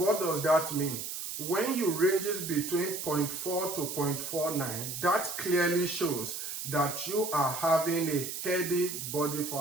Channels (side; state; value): right; noise; hiss, 6 dB below the sound